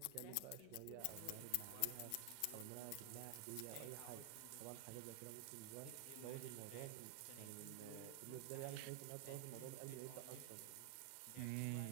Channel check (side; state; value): both; different; correlation 0.00